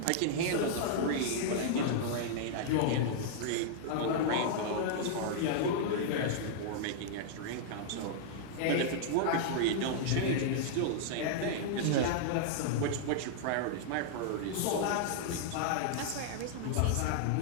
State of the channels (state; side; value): different; both; correlation -0.01